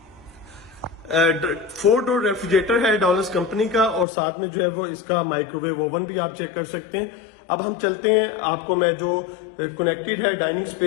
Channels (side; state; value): right; drops out; at 4.0 s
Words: 4 डोर रेफ्रिजरेटर है डॉलर्स कंपनी का और साथ में जो है वो इसका माइक्रोवेव ओवन भी आप चेक कर सकते हैं। अब हम चलते हैं, आपको मैं जो कनेक्टेड है डाइनिंग